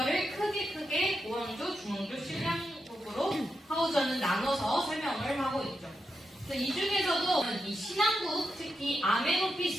크게 고왕조, 중왕조, 신왕국으로 하우저는 나눠서 설명을 하고 있죠. 그래서 이 중에서도 이 신왕국, 특히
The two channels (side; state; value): both; normal; correlation 0.86